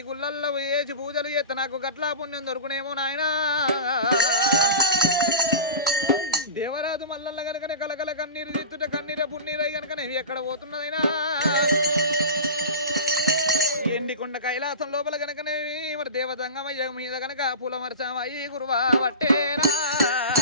గుళ్ళల్లో వేసి పూజలు చేస్తే నాకు గట్లా పుణ్యం దొరుకునేమో నాయనా దేవరాజు మల్లన్న కనుకనే కలకల కన్నీరు తెచ్చుట కన్నీర పున్నీరై కనుకనే ఎక్కడ పోతున్నదైనా ఎండికొండ కైలాసం లోపల కనుకనే మరి దేవతంగమయ్య మీద కనుక పూల వర్షమయ్యి గురువా వట్టేరా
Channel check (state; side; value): inverted; both; correlation -0.31